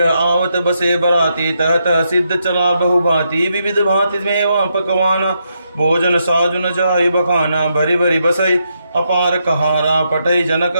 आवत बसे बराती तह तह सिद्ध चला बहुभांति विविध भांति मेवा पकवाना भोजन साजुन जाय बखाना भरी भरी बसई अपार कहारा पटई जनक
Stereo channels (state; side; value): inverted; both; correlation -0.80